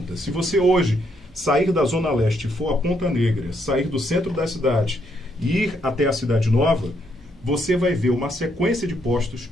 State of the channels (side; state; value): both; normal; correlation 0.74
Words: Se você hoje sair da Zona Leste e for a Ponta Negra, sair do centro da cidade e ir até a Cidade Nova, você vai ver uma sequência de postos